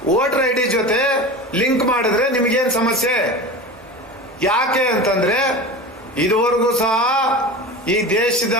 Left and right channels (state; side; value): normal; both; correlation 0.30